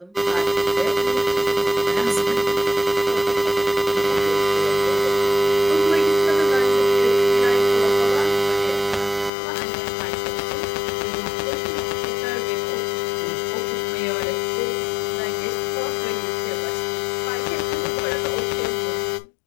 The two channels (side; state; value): right; drops out; at 9.3 s